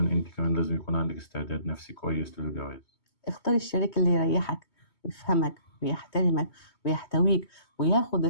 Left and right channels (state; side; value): late; right; 2.2 ms